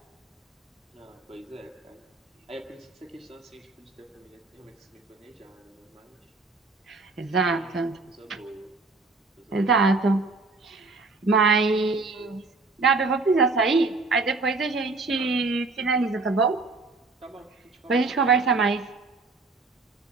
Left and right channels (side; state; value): left; quieter; 3.7 dB